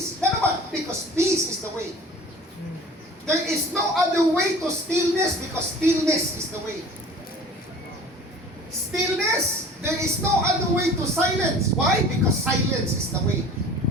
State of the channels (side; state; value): both; normal; correlation 0.44